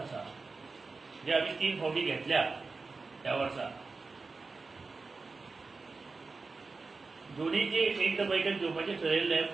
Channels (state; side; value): quieter; left; 4.1 dB